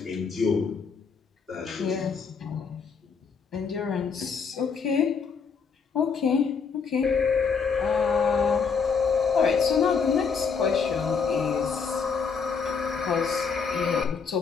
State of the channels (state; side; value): quieter; right; 5.7 dB